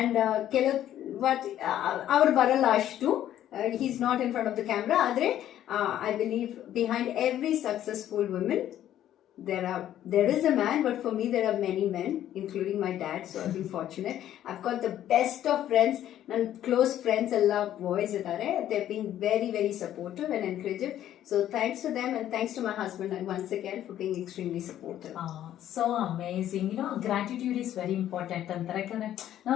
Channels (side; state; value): right; quieter; 11.8 dB